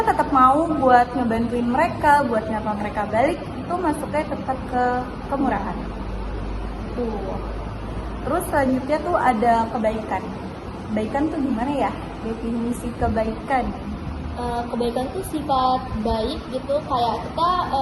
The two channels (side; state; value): both; identical; correlation 1.00